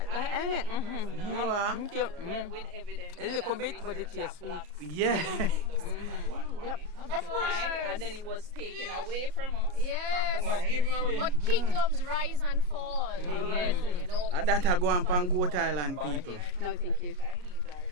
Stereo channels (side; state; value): left; late; 34 ms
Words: With evidence. A little bit, but it tastes sweet. Yeah. Of course. And then it was taken away from us. Yes. But kingdoms rise and fall. Yes, you know. That I go on Goat Island, people. No, thank you.